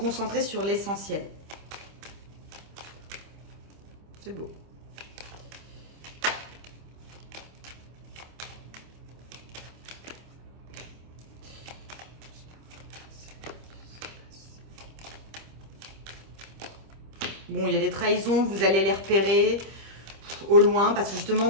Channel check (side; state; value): left; late; 26 ms